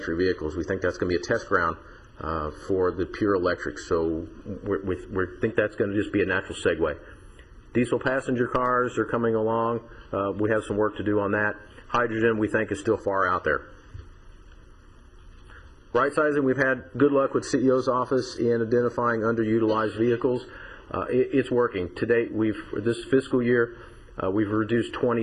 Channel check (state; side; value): identical; both; correlation 1.00